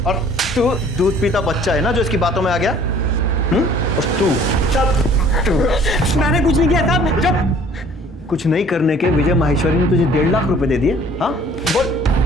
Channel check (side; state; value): both; normal; correlation 0.53